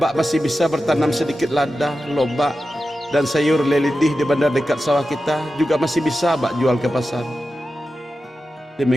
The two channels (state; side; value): normal; both; correlation 0.92